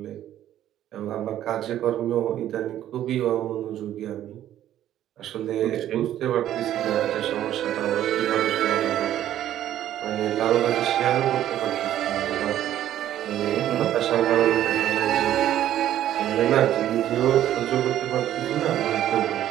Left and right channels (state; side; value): quieter; left; 12.0 dB